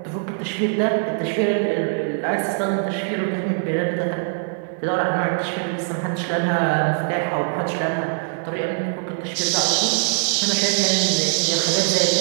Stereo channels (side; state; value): left; silent; 60 dB below the other